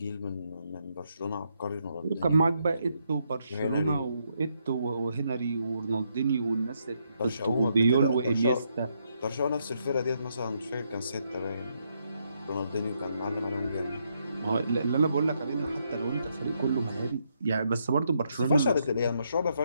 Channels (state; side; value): inverted; both; correlation -0.77